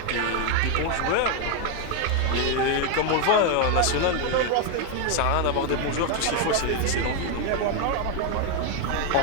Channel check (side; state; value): both; different; correlation 0.01